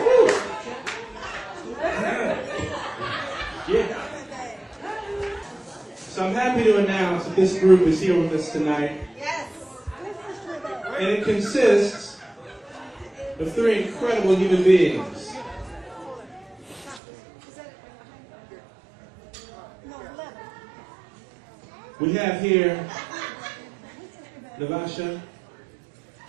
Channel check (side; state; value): left; drops out; at 17.0 s